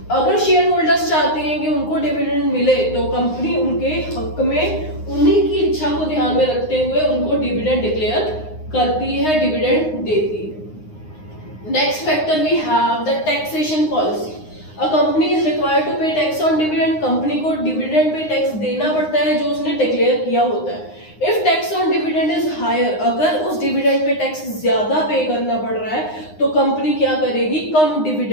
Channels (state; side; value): late; right; 9.7 ms